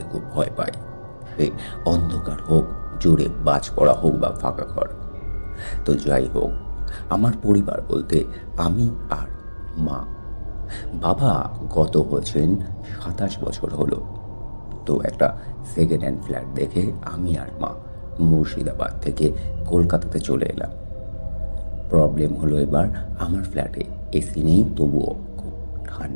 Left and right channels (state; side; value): inverted; both; correlation -1.00